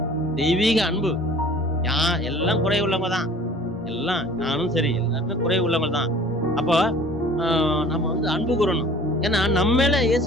தெய்வீக அன்பு. எல்லாம் குறை உள்ளவங்க தான், எல்லாம் நானும் சரி எல்லாருமே குறை உள்ளவங்க தான். அப்போ நம்ம வந்து அன்பு கூறணும். ஏன்னா நம்ம மேல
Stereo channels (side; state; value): both; normal; correlation 0.48